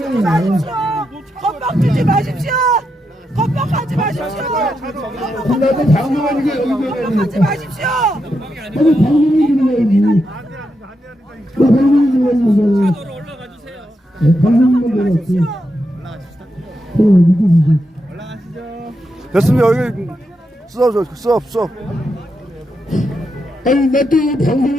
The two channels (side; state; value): both; normal; correlation 0.84